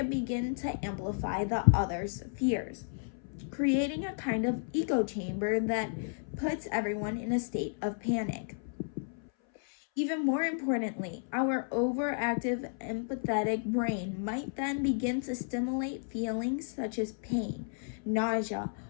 begin to amplify the other's fears, creating a kind of echo chamber that puts everyone in a state of panic. Even more importantly, our overactive empathetic brain might then begin to stimulate feelings such as pain, nausea,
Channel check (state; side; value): silent; right; 56 dB below the other